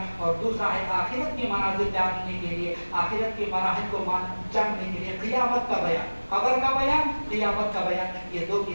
اور دوسرا ہے آخرت کے مناظر جاننے کے لیے، آخرت کے مراحل کو جاننے کے لیے قیامت کا بیان، قبر کا بیان، قیامت کا بیان۔ یہ 2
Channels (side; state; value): both; inverted; correlation -1.00